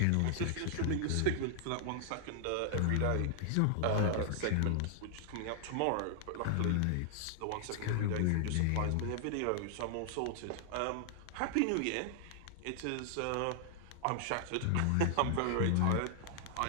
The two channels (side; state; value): both; different; correlation -0.01